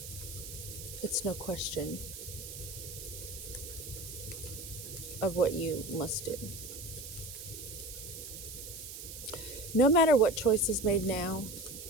it's no question of what you must do. No matter what choice is made now,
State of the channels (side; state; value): right; noise; hiss, 10 dB below the sound